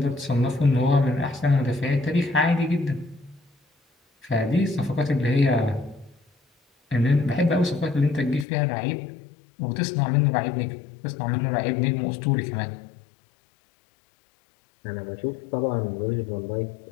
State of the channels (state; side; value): drops out; right; at 8.5 s